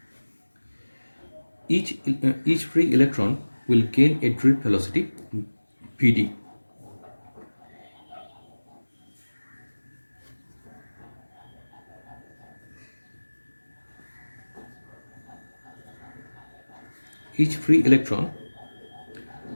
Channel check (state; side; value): inverted; both; correlation -1.00